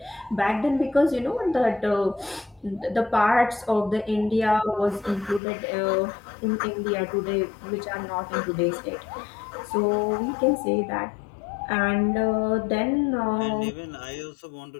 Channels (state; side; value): drops out; right; at 5.4 s